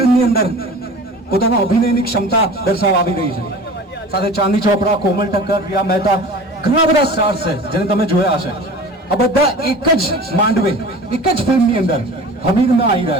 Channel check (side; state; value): both; normal; correlation 0.39